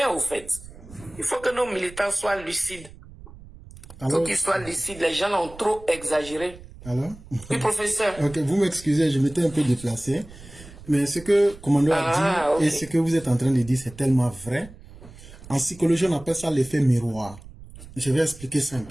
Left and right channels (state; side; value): noise; right; rumble, 18 dB below the sound